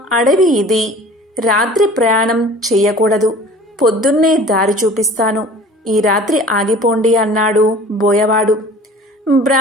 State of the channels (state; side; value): normal; both; correlation 0.45